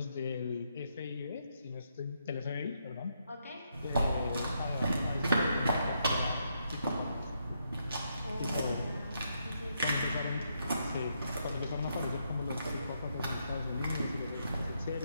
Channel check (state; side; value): inverted; both; correlation -0.78